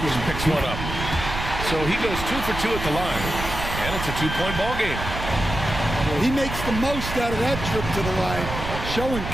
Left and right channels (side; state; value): right; noise; rumble, 6 dB below the sound